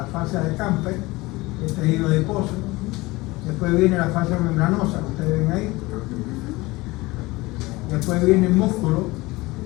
fascia de Camper, el tejido adiposo. Después viene la fascia membranosa, que ustedes ven ahí. Después viene el músculo,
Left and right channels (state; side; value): quieter; right; 21.4 dB